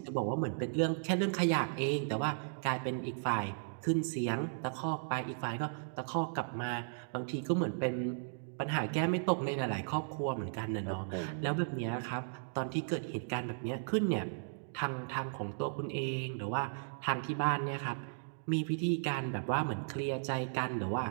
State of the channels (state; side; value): silent; left; digital silence